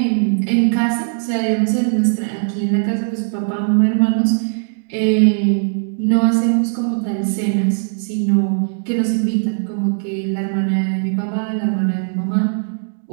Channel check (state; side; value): silent; left; digital silence